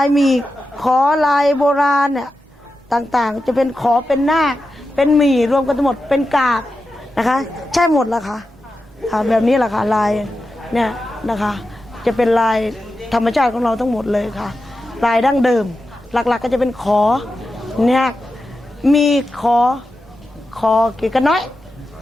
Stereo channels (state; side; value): normal; both; correlation 0.91